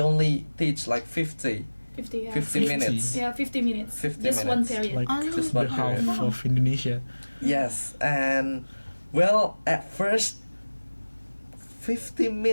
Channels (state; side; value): inverted; both; correlation -1.00